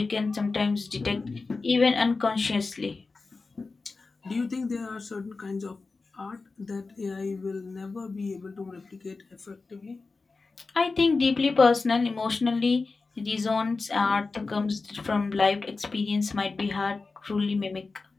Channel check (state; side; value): quieter; right; 4.0 dB